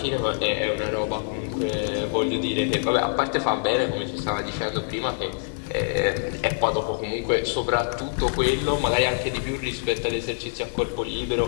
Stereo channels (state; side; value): silent; right; digital silence